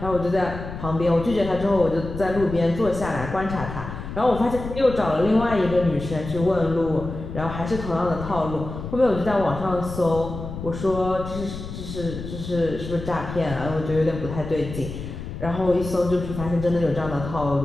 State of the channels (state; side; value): noise; left; rumble, 9 dB below the sound